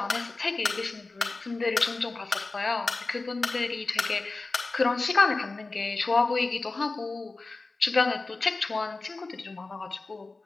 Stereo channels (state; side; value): quieter; right; 3.5 dB